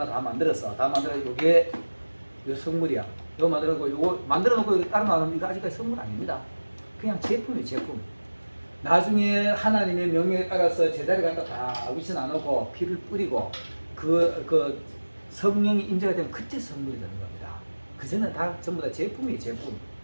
다 만들었어. 다 만들어 이게 요 성물이야. 이거 만들어놓고 이거 만들어놓고 이거 따로 나오면 이거 아직까지 성물 아닙니다. 그냥 제품이에요. 제품. 나중에 하나님의 명령에 따라서 제자리 갖다 다 위치 나누고 피를 뿌리고 그 성령이 임재가 되면 그때 성물이 되는 겁니다. 그전에는 다 전부 다 제품이에요. 제품.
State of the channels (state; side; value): inverted; both; correlation -1.00